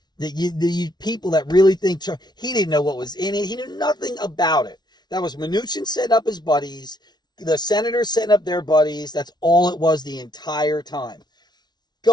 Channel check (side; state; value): right; late; 0.20 ms